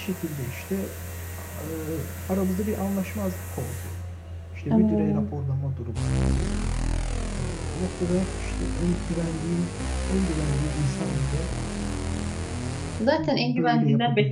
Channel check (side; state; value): both; identical; correlation 1.00